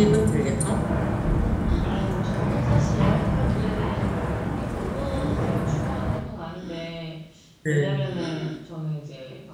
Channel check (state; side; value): identical; both; correlation 1.00